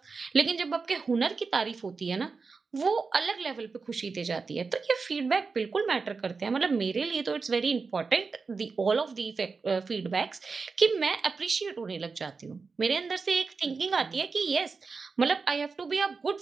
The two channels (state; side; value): quieter; left; 4.6 dB